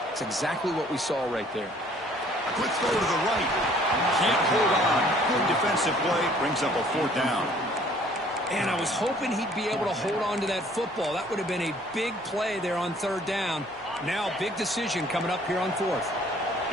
It's exactly what we saw right there. A quick throw to the right. Can't hold on. Good defensive play. Brings up a 4th down. And I was hoping he'd be able to hold on to that football. That would have been a big play there on 3rd down. Now, big decision coming up here on 4th.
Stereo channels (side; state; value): both; normal; correlation 0.57